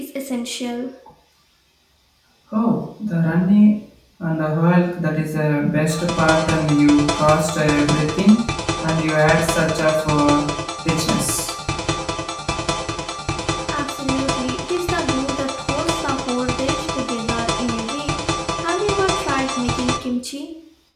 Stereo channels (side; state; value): both; identical; correlation 1.00